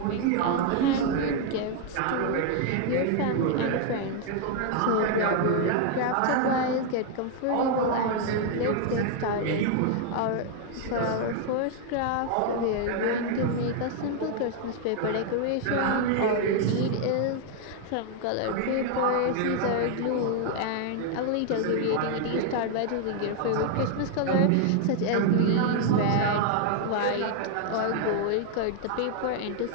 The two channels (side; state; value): both; different; correlation 0.00